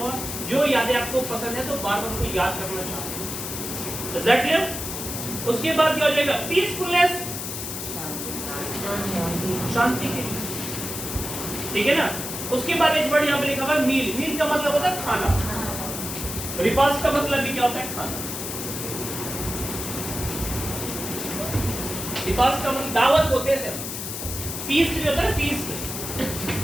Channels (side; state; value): left; noise; hiss, 6 dB below the sound